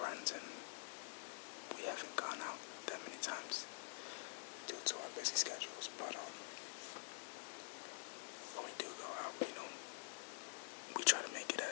and we haven't gone out that many times due to our busy schedules. But when we do go out, we try to make it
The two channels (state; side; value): silent; right; digital silence